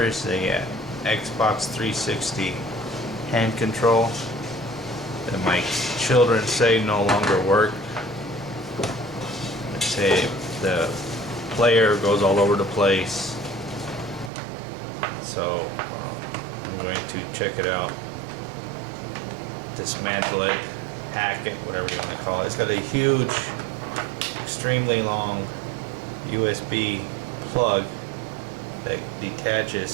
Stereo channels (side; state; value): left; drops out; at 14.3 s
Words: is the Xbox 360 hand control that my children say no longer work. They say the player goes all over the place. So I'm going to check it out, dismantle it, hack it, whatever you want to call it. It's got a huge, extremely long USB plug that